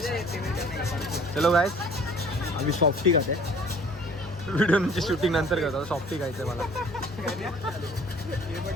चलो गाइस, आम्ही सॉफ्टी खाते. व्हिडिओची शूटिंग नंतर करतो, सॉफ्टी खायचं मला.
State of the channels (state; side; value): normal; both; correlation 0.52